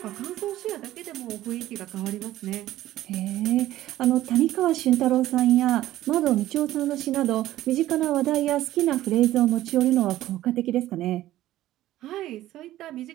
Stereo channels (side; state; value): left; quieter; 14.6 dB